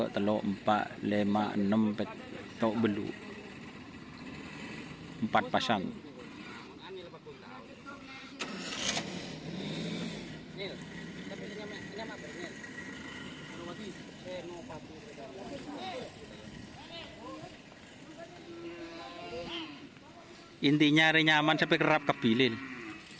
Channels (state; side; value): identical; both; correlation 1.00